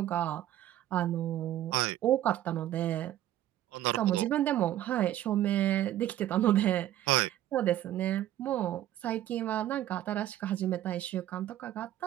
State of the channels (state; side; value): quieter; left; 13.0 dB